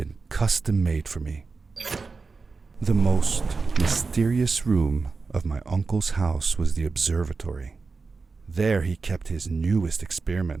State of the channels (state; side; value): quieter; left; 4.4 dB